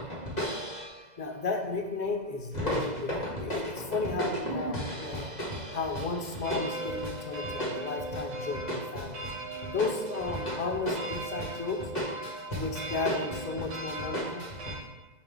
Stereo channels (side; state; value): left; late; 2.0 ms